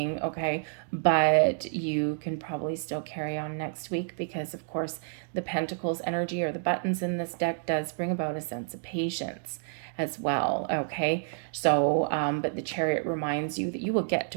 okay? But you can probably still carry on next week because, of course, the Pentacles energy or the buttons in this deck does bring about a sense of patience as well, okay? So, but the Chariot reminds you that you will get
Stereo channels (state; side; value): silent; left; digital silence